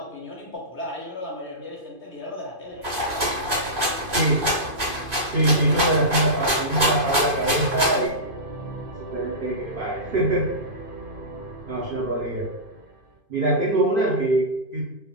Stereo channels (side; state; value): left; late; 2.5 ms